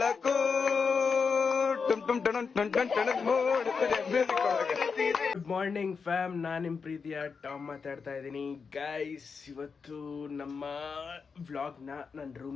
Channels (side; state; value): right; quieter; 5.4 dB